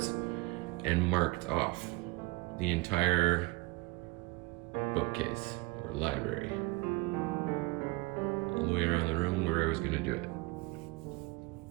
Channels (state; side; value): quieter; left; 22.1 dB